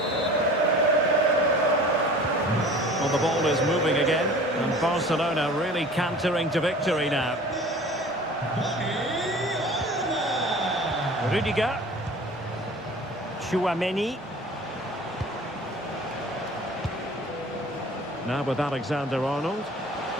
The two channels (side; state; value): both; normal; correlation 0.44